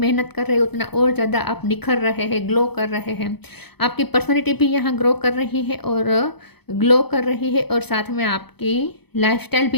कर रहे हैं उतना और ज़्यादा आप निखर रहे हैं, ग्लो कर रहे हैं। आपकी पर्सनैलिटी भी यहाँ ग्रो कर रही है और ग्लो कर रही है, और साथ में आपकी लाइफस्टाइल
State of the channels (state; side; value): late; right; 0.98 ms